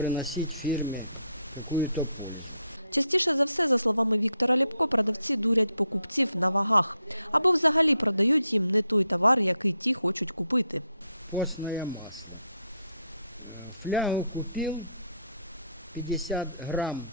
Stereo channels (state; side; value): inverted; both; correlation -0.76